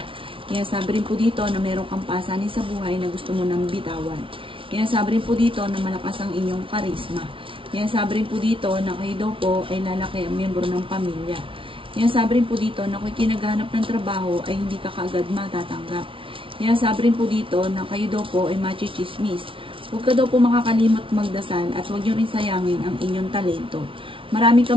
Kaya sabi rin po dito na mayroong kang pasanin sa buhay na gusto mo nang bitawan. Kaya sabi rin po dito na malakas ang inyong karisma. Kaya sabi rin po dito na kayo daw po ay lalaki ang miyembro ng pamilya. Kaya sabi rin po dito na kung kinaghanap ng trabaho ay hindi ka kaagad matatanggap. Kaya sabi rin po dito na kayo daw po ay machichismis. Huwag ka daw po makakalimot magdasal at huwag nyo rin sayangin ang inyong talento. Marami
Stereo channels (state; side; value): late; left; 0.25 ms